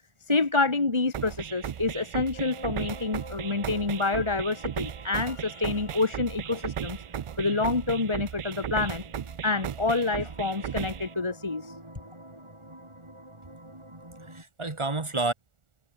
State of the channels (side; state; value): left; late; 1.4 ms